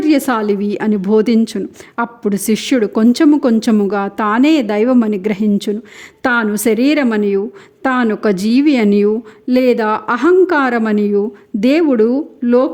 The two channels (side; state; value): both; identical; correlation 1.00